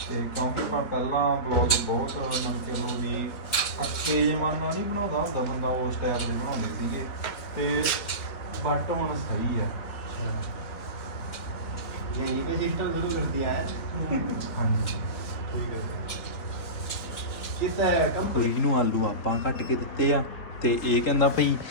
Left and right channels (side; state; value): right; late; 4.0 ms